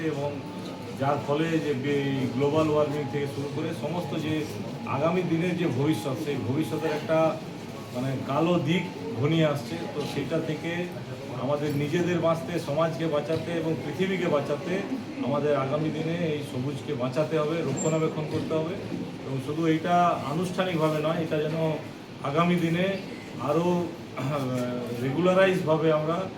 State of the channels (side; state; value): both; identical; correlation 1.00